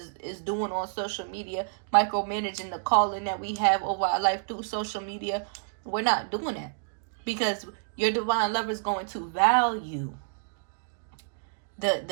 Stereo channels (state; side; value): silent; left; digital silence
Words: is doing on social media, micromanaging the calling that we have over our life through social media. We're not doing that, because your divine lover is going to value